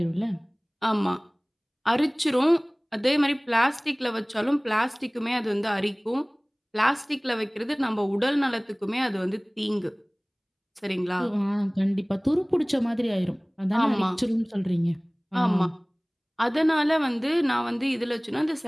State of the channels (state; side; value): identical; both; correlation 1.00